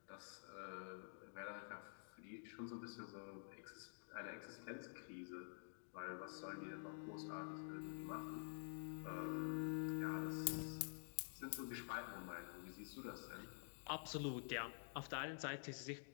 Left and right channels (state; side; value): silent; right; digital silence